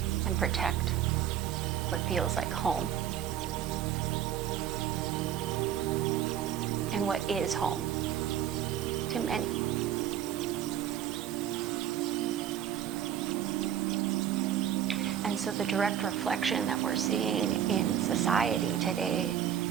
and protect what feels like home and what is home to many. And so the direct reflection that we're seeing in society today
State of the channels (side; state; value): left; quieter; 10.0 dB